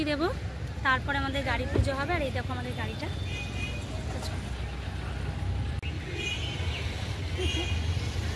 দেব, তারপরে আমাদের গাড়ি পুজো হবে। আর এই দেখো আমাদের গাড়িটা।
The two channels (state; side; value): identical; both; correlation 1.00